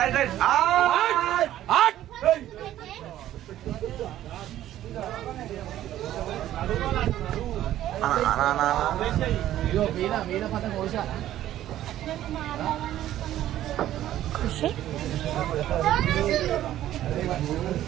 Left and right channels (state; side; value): quieter; left; 12.9 dB